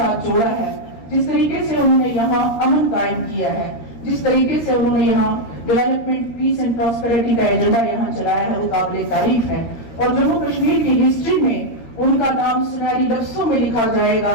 جوڑا ہے، جس طریقے سے انہوں نے یہاں امن قائم کیا ہے، جس طریقے سے انہوں نے یہاں ڈیولپمنٹ، پیس اینڈ پراسپیرٹی کا ایجنڈا یہاں چلایا ہے، وہ قابل تعریف ہے اور جموں کشمیر کی ہسٹری میں ان کا نام سنہری لفظوں میں لکھا جائے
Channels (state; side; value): late; right; 13 ms